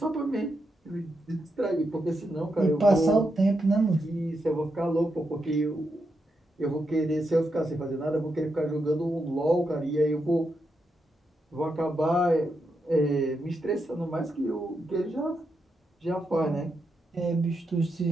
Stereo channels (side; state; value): both; normal; correlation 0.84